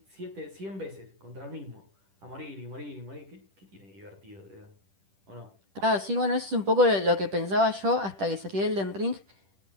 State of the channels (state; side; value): late; left; 10 ms